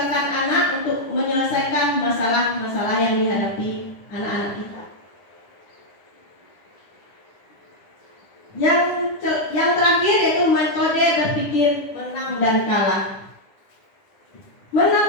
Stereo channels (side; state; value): right; late; 9.9 ms